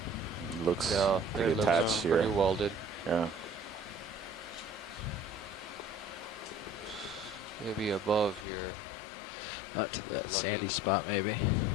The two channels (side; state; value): right; drops out; at 8.5 s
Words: looks no, pretty it attached looks here. pretty welded. Yeah. Maybe above here. We'll get lucky. Sandy spot maybe.